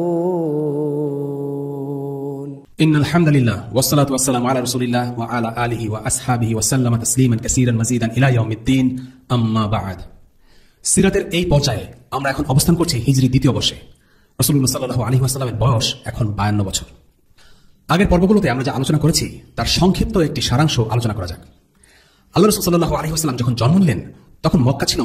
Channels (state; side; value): identical; both; correlation 1.00